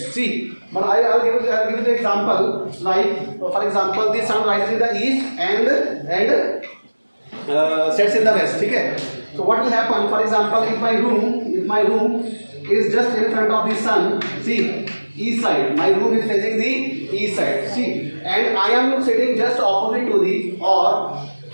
See, but I'll give you the example. Like for example, the sun rises in the east and sets in the west. Okay. So what will happen? For example, if my room is just in front of the sun, see, east side. My room is facing the east side. See, and I am sitting just opposite to the, or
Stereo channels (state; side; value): inverted; both; correlation -1.00